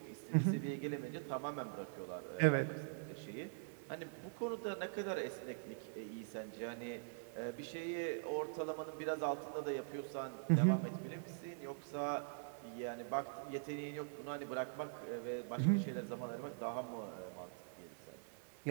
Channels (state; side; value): silent; left; digital silence